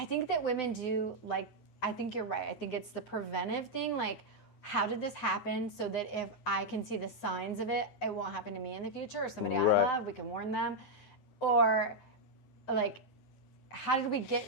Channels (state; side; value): late; right; 9.7 ms